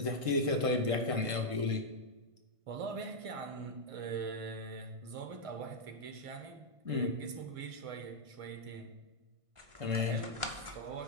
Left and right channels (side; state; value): left; late; 1.5 ms